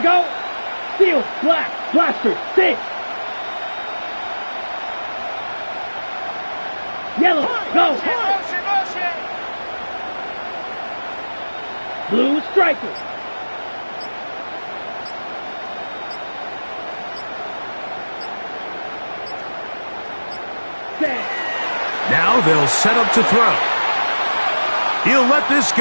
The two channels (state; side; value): inverted; both; correlation -1.00